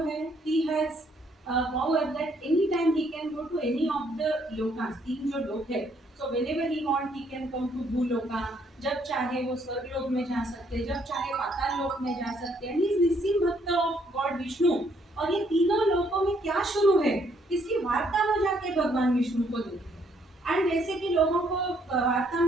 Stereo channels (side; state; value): both; normal; correlation 0.68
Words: है, he has power that any time he can go to any of the Lucas, तीन जो लोक है। So whenever he want he can come to भूलोका, जब चाहे वो स्वर्गलोक में जा सकते, जब चाहे पाताल लोक में जा सकते हैं। He is निस्सिम भक्त ऑफ गॉड विष्णु। और ये तीनों लोकों में क्या शुरू है, इसकी वार्ता में जाके भगवान विष्णु को देते हैं। एंड जैसे कि लोगों को वार्ता